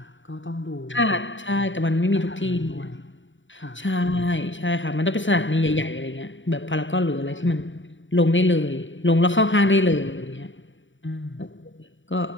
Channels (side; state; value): right; late; 0.55 ms